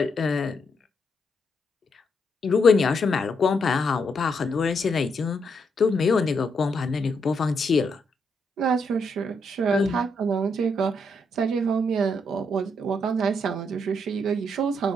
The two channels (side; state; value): both; normal; correlation 0.78